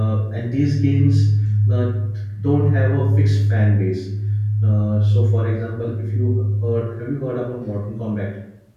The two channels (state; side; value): identical; both; correlation 1.00